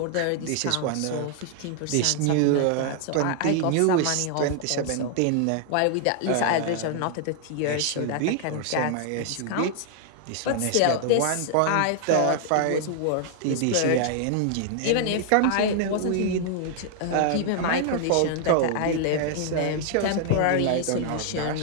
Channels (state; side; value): different; both; correlation 0.00